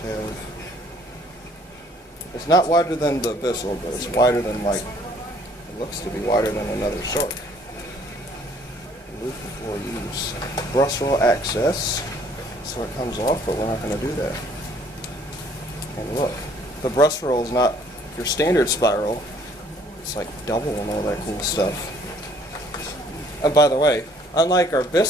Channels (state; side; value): normal; both; correlation 0.60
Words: have? It's not wider than the Bissell, but it's wider than, like, it looks to be wider than another Shark. Remove before use. Brush roll access, so it comes off, but we're not going to do that. And look, the brush roll is not your standard spiral. It's like double and all that cool stuff. And by the way, unlike our